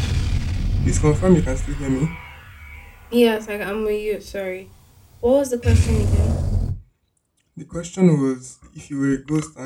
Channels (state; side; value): identical; both; correlation 1.00